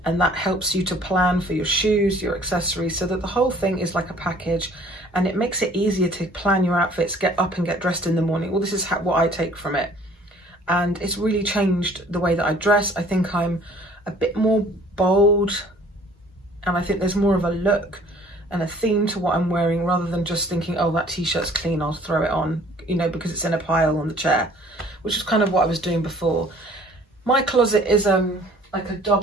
and that helps you to plan for your shoes, your accessories, so that the whole thing is like a package, and it makes it easier to plan your outfits, get up and get dressed in the morning. Well, this is what I take from it, and it's really changed the way that I dress. I think I'm a bit more bold, and I think there's more of a look and a theme to what I'm wearing, rather than just thinking, oh, that t-shirt's clean, I'll throw it on, you know, because it's in a pile on the chair, which is kind of what I was doing before. My closet is like a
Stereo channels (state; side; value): normal; both; correlation 0.54